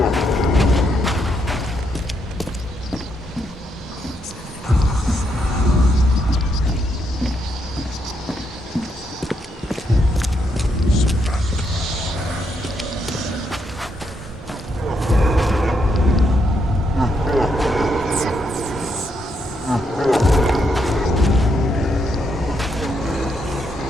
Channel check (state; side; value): normal; both; correlation 0.78